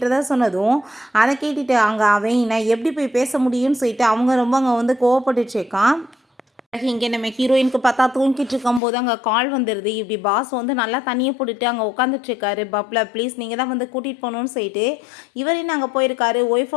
சொன்னதும் அதை கேட்டுட்டு அங்கே அவன் நான் எப்படி போய் பேச முடியும்னு சொல்லிட்டு அவங்க ரொம்ப அங்கே வந்து கோவப்பட்டுட்டு இருக்கான். இங்கே நம்ம ஹீரோயினுக்கு பார்த்தா தூங்கிட்டு இருக்கும்போது அங்கே கால் வந்துடுது. இப்படி பாஸ் வந்து நல்லா தண்ணியை போட்டுட்டு அங்கே உட்காந்துட்ருக்காரு. பப்ல ப்ளீஸ் நீங்கள் தான் வந்து கூட்டிகிட்டு போகணுன்னு சொல்லிட்டு இவரையும் அங்கே போயிருக்காரு.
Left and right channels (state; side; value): drops out; right; at 8.8 s